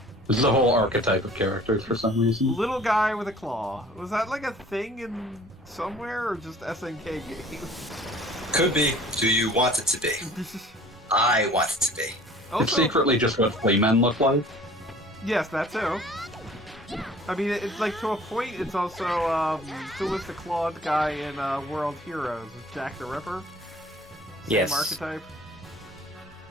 This is a whole archetype of characters for some reason. Little guy with a claw. Was that like a thing in somewhere or just SNK games? Could be. Do you want it to be? I want it to be. It's Also, secretly just what flea men look like. yes, that too. I mean, it's like to a point. It's also who was the clawed guy in World Heroes? Is Jack the Ripper? Same Yes. archetype.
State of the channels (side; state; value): both; normal; correlation 0.50